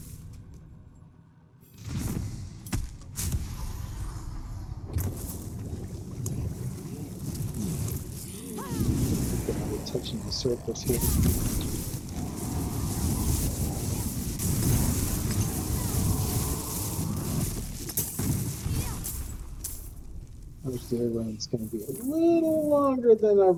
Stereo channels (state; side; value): identical; both; correlation 1.00